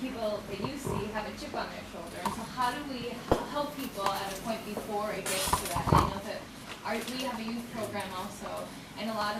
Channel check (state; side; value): identical; both; correlation 1.00